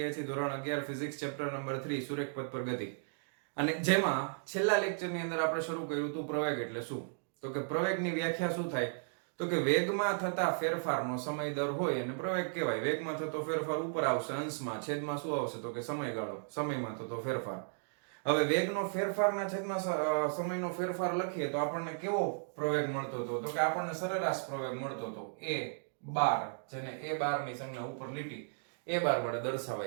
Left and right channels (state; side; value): silent; left; digital silence